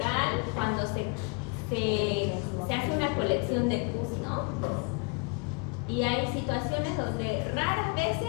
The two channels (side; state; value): right; quieter; 32.6 dB